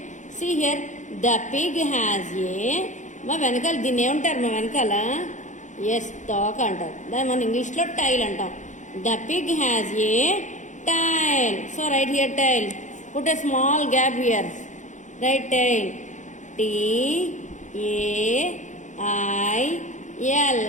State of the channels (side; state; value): right; late; 0.35 ms